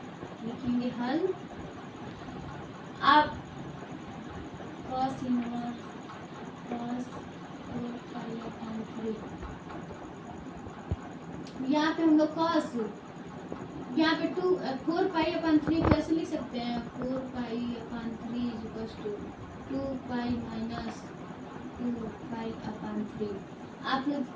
लिखेंगे हल। आप cos इनवर्स cos 4π/3, यहाँ पे हम लोग cos, यहाँ पे 4π/3 कैसे लिख सकते हैं? 4π/3 = 2π-2π/3। आप लोग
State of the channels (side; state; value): both; identical; correlation 1.00